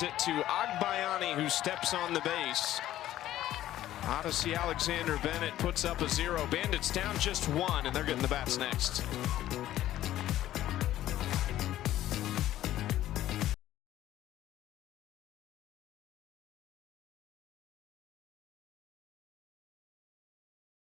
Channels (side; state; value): right; quieter; 13.5 dB